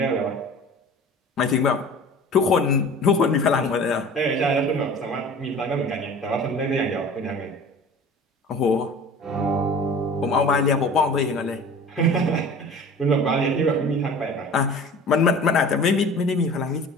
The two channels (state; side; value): normal; both; correlation 0.41